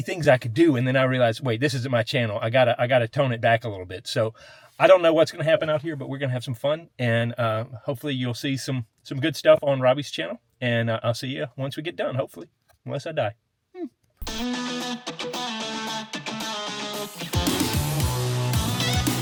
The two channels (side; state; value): both; identical; correlation 1.00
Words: things I could do, and then I realized, wait, this isn't my channel. I gotta tone it back a little bit. So I don't know what's gonna happen out here, but we're gonna have some fun, and hopefully you'll see some good stuff on Robbie's channel. And I'll see you once we get done, hopefully, unless I die.